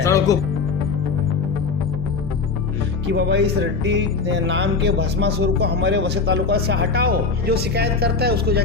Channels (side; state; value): right; quieter; 4.5 dB